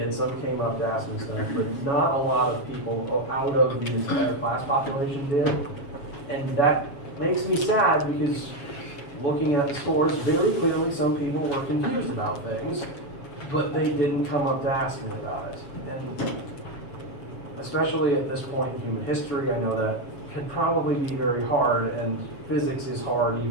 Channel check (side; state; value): right; late; 7.2 ms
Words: some came up to ask me stuff, but not a lot of people out of the entire class population did. And that makes me sad because looking at the scores, very clearly some people were confused about things, but they didn't come up to ask me about it. And especially at this point in human history, I know that can probably be very hard, and physics is hard